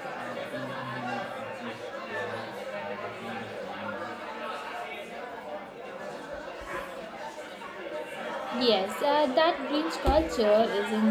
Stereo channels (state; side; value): identical; both; correlation 1.00